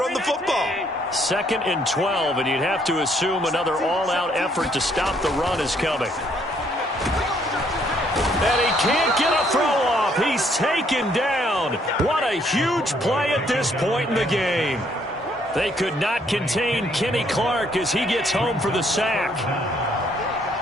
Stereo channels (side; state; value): both; normal; correlation 0.67